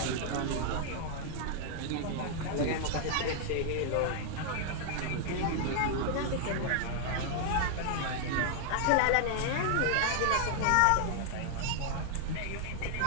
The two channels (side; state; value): both; different; correlation 0.00